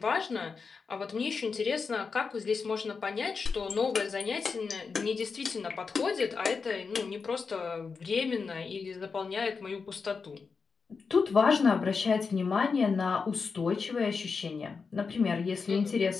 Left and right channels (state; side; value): quieter; right; 5.1 dB